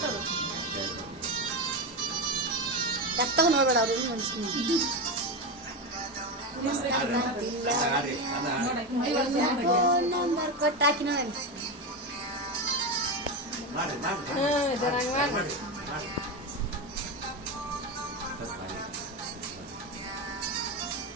ಎತ್ತಗ ನೋಡ್ಬೇಡ ಅವ್ರು ನಂಬರ್ ಕೊಟ್ಟು ಹಾಕಿ ನೋಡಿ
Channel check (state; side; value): normal; both; correlation 0.16